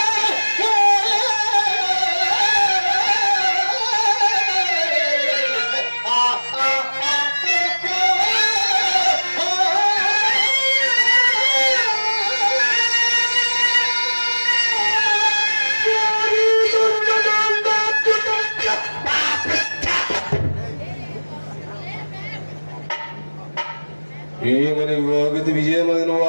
ఏమని వాగిది విజయమని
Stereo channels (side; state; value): both; inverted; correlation -1.00